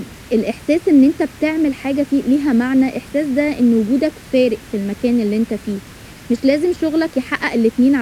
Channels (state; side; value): identical; both; correlation 1.00